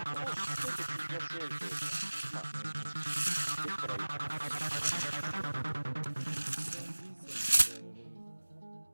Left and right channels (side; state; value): both; inverted; correlation -1.00